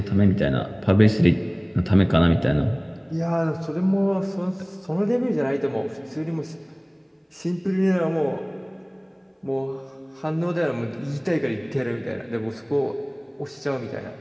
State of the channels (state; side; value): identical; both; correlation 1.00